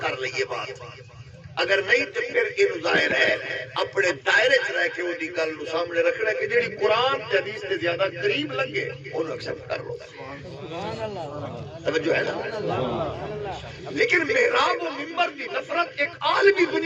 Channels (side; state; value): both; identical; correlation 1.00